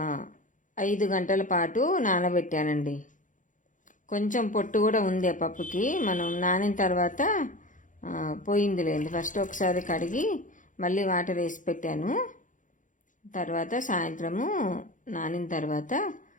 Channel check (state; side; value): late; right; 0.37 ms